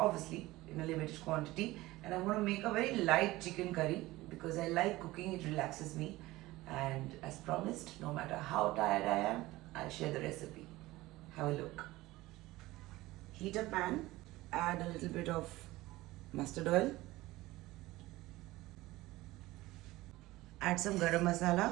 in a limited quantity. And I'm going to make a very light chicken curry because I like cooking, it relaxes me. And as promised, no matter how tired I am, I'll share the recipe. Have a look. Heat a pan, add a little bit of mustard oil, add some garam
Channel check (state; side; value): quieter; left; 18.5 dB